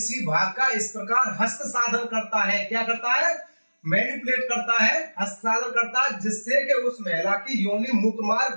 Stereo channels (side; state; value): both; inverted; correlation -1.00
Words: भाग का इस प्रकार हस्त साधन करता है, क्या करता है, मैनिपुलेट करता है, हस्तांतरण करता है, जिससे कि उस महिला की योनि,